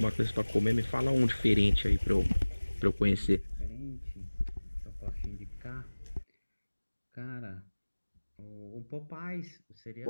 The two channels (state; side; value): inverted; both; correlation -1.00